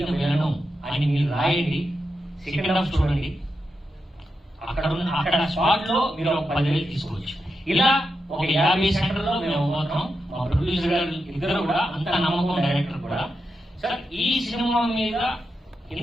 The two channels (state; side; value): normal; both; correlation 0.87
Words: విలను అని మీరు రాయండి. సెకండ్ హాఫ్ చూడండి. అక్కడ స్పాట్ లో మీరు ఒక 10,000 తీసుకోవచ్చు. ఇలా ఒక 50 సెంటర్లో మేము పోతాం. మా ప్రొడ్యూసర్ గారు ఇద్దరు కూడా అంత నమ్మకం, డైరెక్టర్ కూడా. సార్ ఈ సినిమా మీద